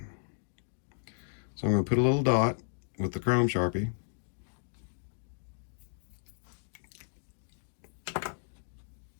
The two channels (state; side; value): silent; right; digital silence